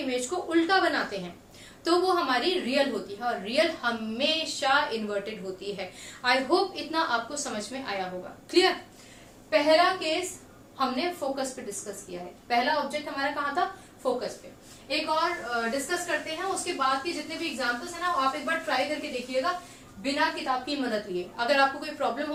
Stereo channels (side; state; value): both; identical; correlation 1.00